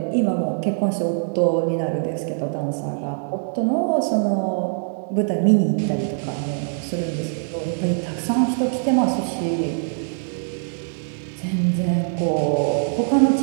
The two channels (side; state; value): left; silent; digital silence